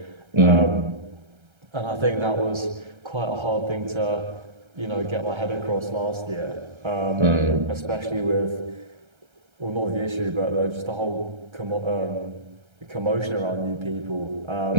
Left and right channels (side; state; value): left; late; 1.3 ms